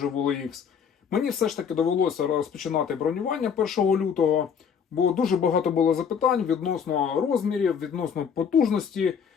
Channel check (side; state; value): right; quieter; 7.0 dB